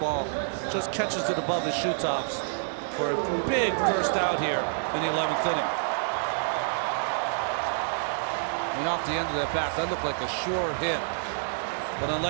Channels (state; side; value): silent; left; digital silence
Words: Just catches it above his shoe tops for a big first out here in the 11th inning. And off the end of that bat, that looked like a sure hit. But